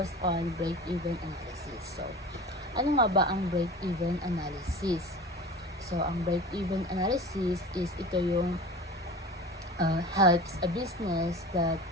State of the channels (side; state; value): both; normal; correlation 0.36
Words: on break-even analysis. So, ano nga ba ang break-even analysis? So, ang break-even analysis is ito yung helps a business that